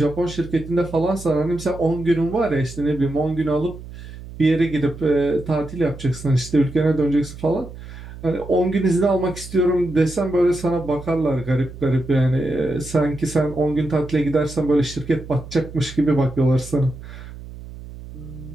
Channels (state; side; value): noise; right; hum, 14 dB below the sound